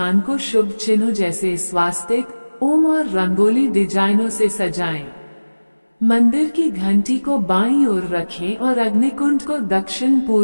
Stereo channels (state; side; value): inverted; both; correlation -1.00